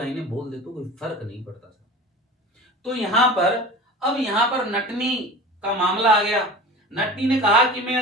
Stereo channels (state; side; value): normal; both; correlation 0.36